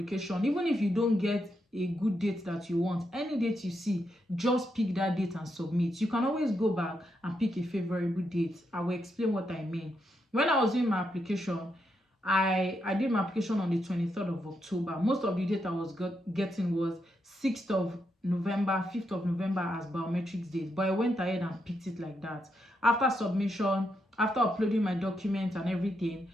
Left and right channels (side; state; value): both; normal; correlation 0.82